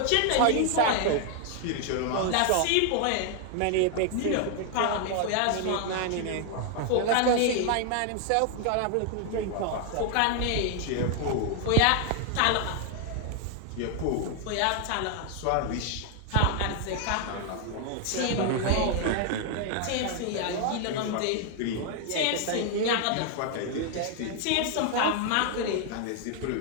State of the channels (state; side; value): different; both; correlation 0.00